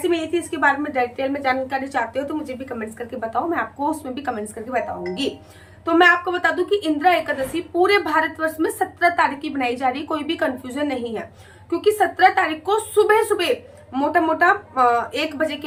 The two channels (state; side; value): identical; both; correlation 1.00